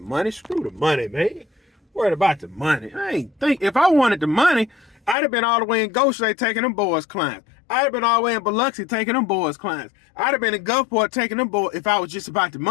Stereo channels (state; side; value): drops out; right; at 5.2 s